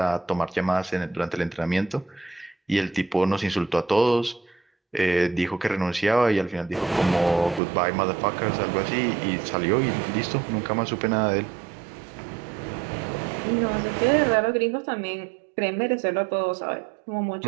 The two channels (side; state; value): left; drops out; at 7.6 s